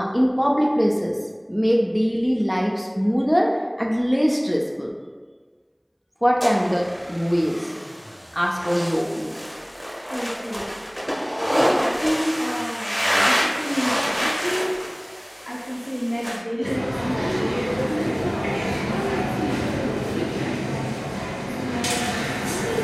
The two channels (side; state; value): both; identical; correlation 1.00